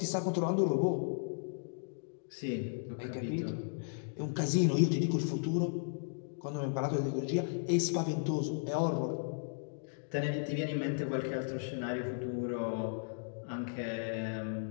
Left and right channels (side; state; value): right; silent; digital silence